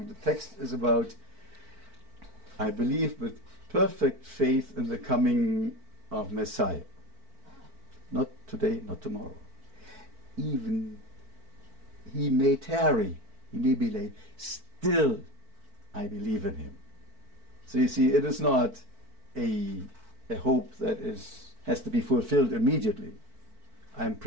The text is about, I believe with perfect faith in the coming of Messiah. Not today, not tomorrow. Even he may tarry, he may be late, still I believe in him. So you see, it is not a hope that has to be fulfilled immediately. I'm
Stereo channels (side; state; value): left; late; 4.5 ms